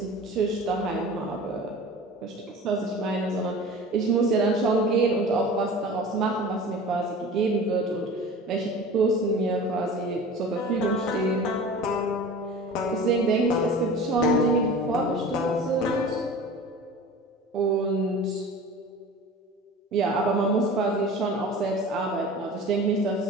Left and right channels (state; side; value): normal; both; correlation 0.38